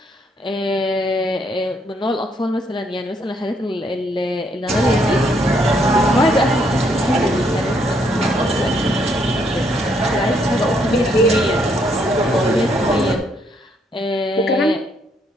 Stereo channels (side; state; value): both; normal; correlation 0.71